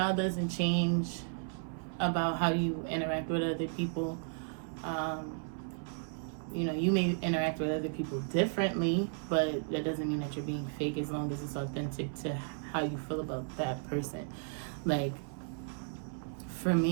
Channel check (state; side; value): silent; left; 55 dB below the other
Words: doesn't change about how you interact with other people. You may interact with other people differently, but that doesn't mean that you're being fake, as long as it's authentic to how you feel about that person. Like, for